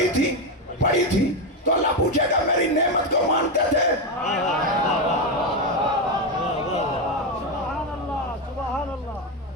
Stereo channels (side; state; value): both; normal; correlation 0.09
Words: تھی، تو اللہ پوچھے گا میری نعمت کو مانتے تھے؟